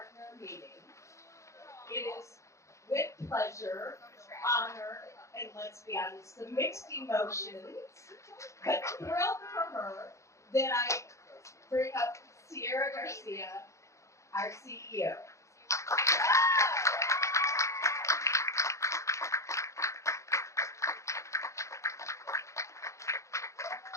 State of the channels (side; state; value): right; late; 0.15 ms